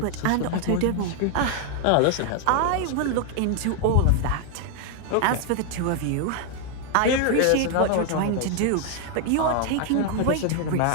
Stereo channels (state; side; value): different; both; correlation 0.00